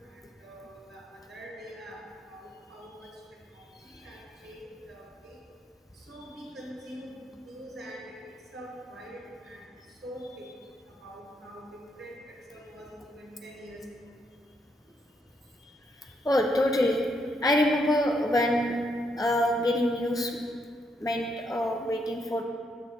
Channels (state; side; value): normal; both; correlation 0.76